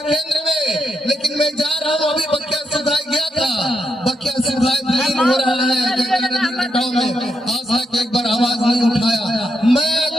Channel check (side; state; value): both; normal; correlation 0.82